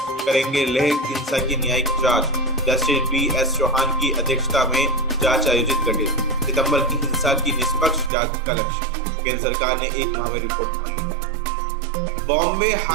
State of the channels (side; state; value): left; drops out; at 8.1 s